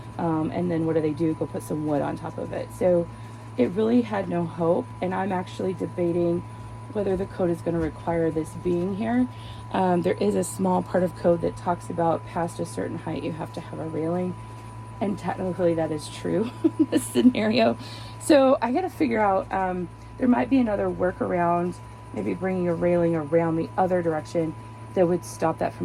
And then what do? Go put some wood on top of it. So it really had no hope. And I'm actually debating whether the code is going to require this being here. There is a small part of code that talks about past a certain height, you have to have a railing. And technically that is true in this scenario. So I got to figure out, there might be another workaround, maybe bringing a railing around the other direction that would stop that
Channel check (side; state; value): both; identical; correlation 1.00